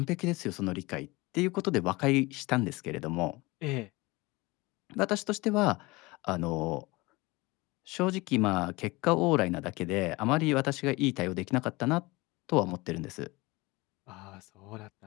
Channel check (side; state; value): right; quieter; 22.9 dB